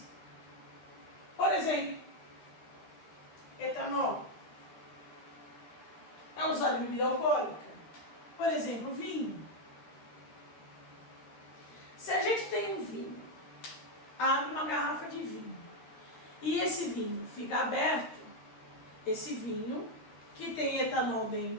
Por exemplo, etanol é usado em bebida alcoólica. Por exemplo, vinho. Se a gente tem um vinho, abre uma garrafa de vinho, e esse vinho fica aberto, esse vinho, que tem etanol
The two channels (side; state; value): right; late; 13 ms